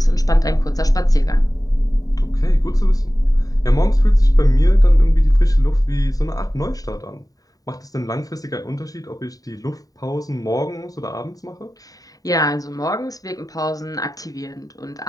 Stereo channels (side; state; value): right; late; 0.18 ms